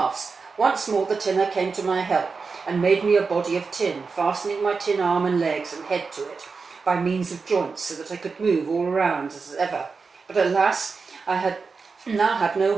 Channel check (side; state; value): left; quieter; 4.8 dB